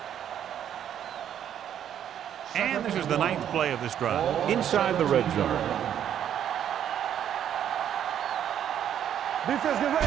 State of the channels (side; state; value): left; quieter; 9.9 dB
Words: And this is the 9th play of this drive. Inside the red zone. Defense, get